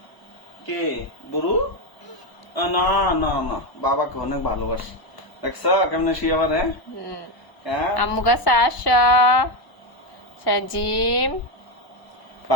কে বুড়ু? না না না, বাবাকে অনেক ভালোবাসে। দেখছ কেমনে শুয়ে আবার? হুম। হ্যাঁ আম্মু কাছে আসা সাজিম।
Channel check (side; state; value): right; late; 1.0 ms